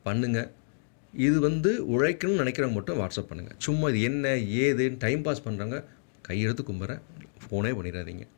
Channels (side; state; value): right; silent; digital silence